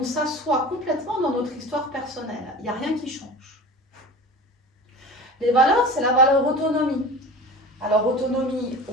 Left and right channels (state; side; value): normal; both; correlation 0.35